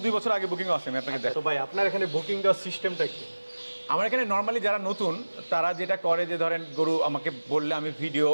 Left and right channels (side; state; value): both; inverted; correlation -1.00